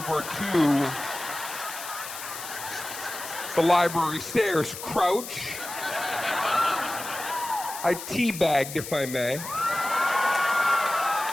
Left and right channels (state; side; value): noise; left; hiss, 10 dB below the sound